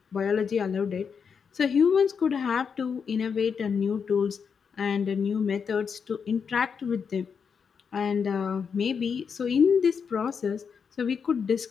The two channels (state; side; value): quieter; right; 6.3 dB